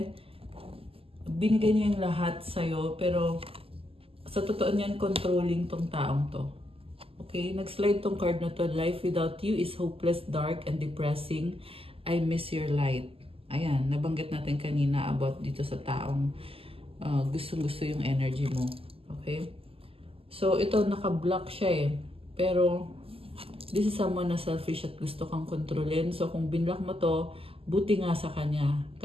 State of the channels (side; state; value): left; late; 0.27 ms